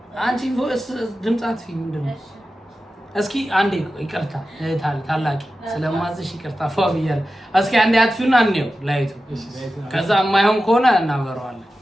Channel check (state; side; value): normal; both; correlation 0.93